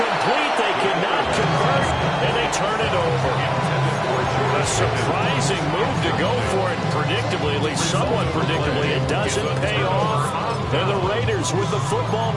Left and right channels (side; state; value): both; identical; correlation 1.00